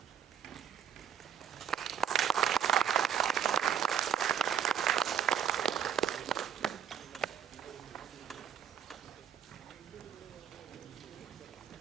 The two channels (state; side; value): quieter; left; 8.8 dB